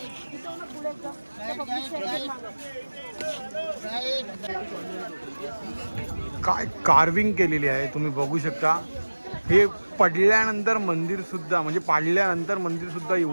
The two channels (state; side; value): inverted; both; correlation -1.00